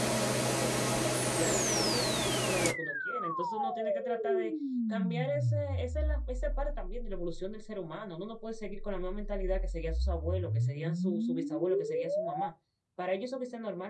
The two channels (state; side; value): identical; both; correlation 1.00